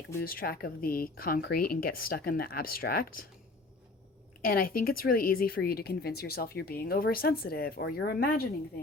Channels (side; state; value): right; quieter; 3.3 dB